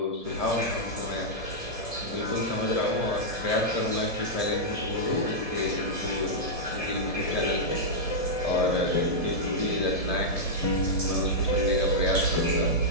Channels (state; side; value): late; right; 1.7 ms